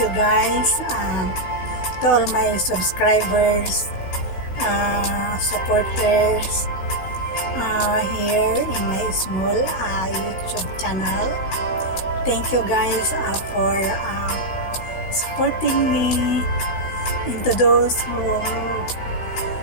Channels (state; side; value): late; right; 16 ms